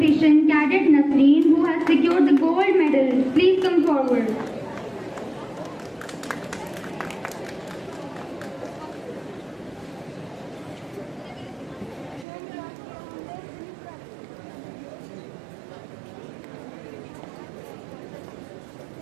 Cadet Nasreen, who has secured the gold medal. Please come forward.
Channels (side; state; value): left; drops out; at 12.2 s